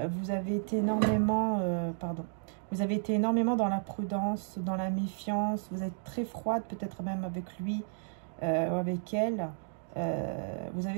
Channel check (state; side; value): silent; left; digital silence